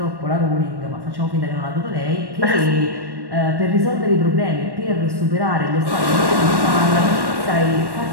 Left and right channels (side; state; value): left; late; 1.1 ms